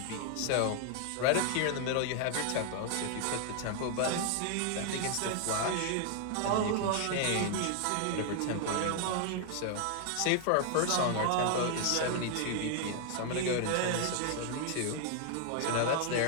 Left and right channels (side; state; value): both; different; correlation 0.00